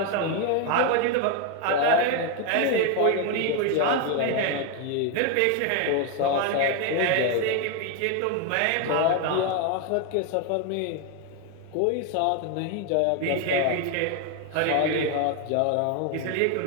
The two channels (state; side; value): different; both; correlation 0.01